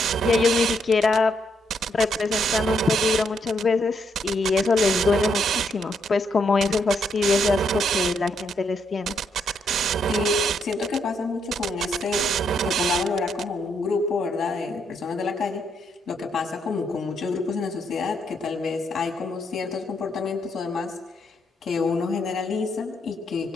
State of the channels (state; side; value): normal; both; correlation 0.76